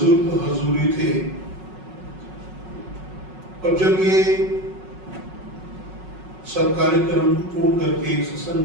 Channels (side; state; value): left; late; 5.4 ms